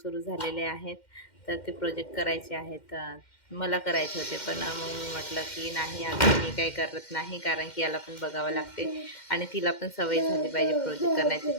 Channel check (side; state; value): right; late; 2.1 ms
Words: झालेले आहेत, तर ते प्रोजेक्ट करायचे आहेत. मला करायचे होते, पण मग मी म्हटलं की नाही, आता मी काही करत नाही, कारण की याला पण बघावं लागते आणि तिला पण सवय झाली पाहिजे प्रोजेक्ट करण्याची.